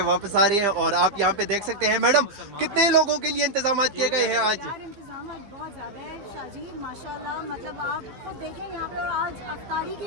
वापस आ रहे हैं। और आप यहाँ पे देख सकते हैं मैडम, कितने लोगों के लिए इंतजाम किए गए हैं आज? इंतजाम बहुत ज़्यादा है शाजी, माशाल्लाह। मतलब आप खुद देखें यहाँ पे आज अफ्तारी की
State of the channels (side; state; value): left; late; 15 ms